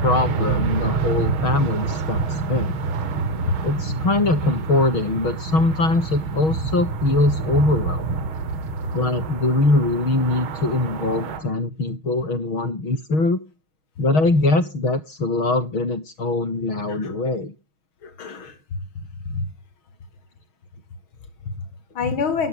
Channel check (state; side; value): late; right; 6.3 ms